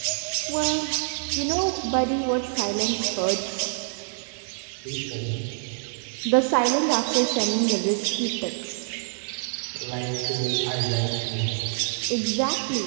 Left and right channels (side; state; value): left; silent; 61 dB below the other